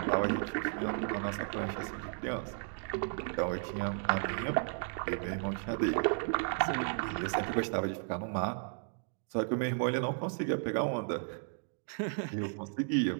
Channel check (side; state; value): left; silent; 55 dB below the other